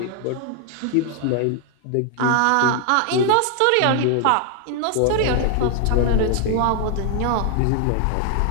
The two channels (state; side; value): different; both; correlation 0.00